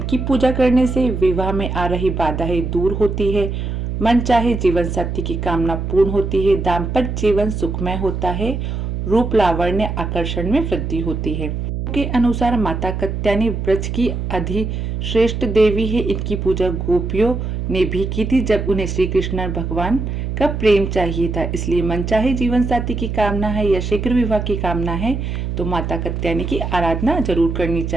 पूजा करने से विवाह में आ रही बाधाएं दूर होती है, मन चाहे जीवन साथी की कामना पूर्ण होती है, दाम्पत्य जीवन सुखमय होता है, रूप लावण्य आकर्षण में वृद्धि होती है। के अनुसार माता कत्यानी ब्रज की अधिश्रेष्ठ देवी है। इनकी पूजा गोपियों ने भी की थी जब उन्हें श्री कृष्ण भगवान का प्रेम चाहिए था। इसलिए मनचाहे जीवन साथी की कामना है या शीघ्र विवाह की कामना है तो माता कत्यानी की आराधना जरूर करनी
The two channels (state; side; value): noise; right; hum, 3 dB below the sound